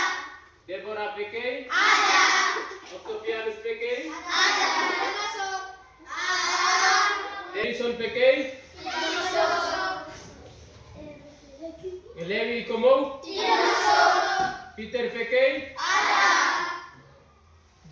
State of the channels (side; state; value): both; identical; correlation 1.00